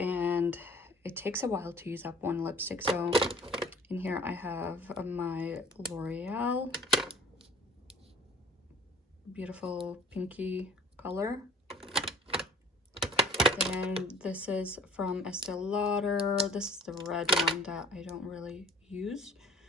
it takes a while to use up one lipstick. So in here I have my L'Oreal beautiful pinky color. And this is from Estee Lauder. This is the red one that I don't really use.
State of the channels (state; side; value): normal; both; correlation 0.48